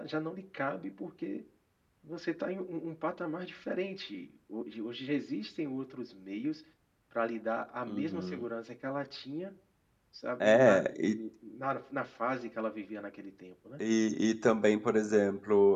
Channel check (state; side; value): identical; both; correlation 1.00